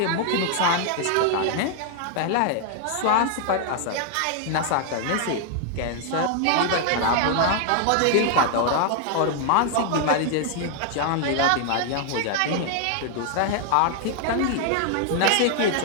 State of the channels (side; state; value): both; different; correlation 0.00